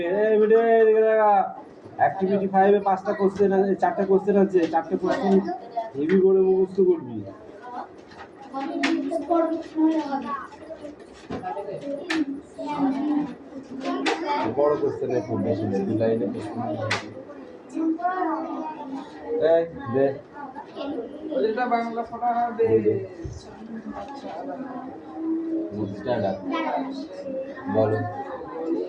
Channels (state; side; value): identical; both; correlation 1.00